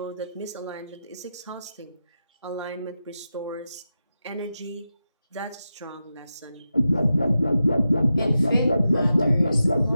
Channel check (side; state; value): both; inverted; correlation -0.90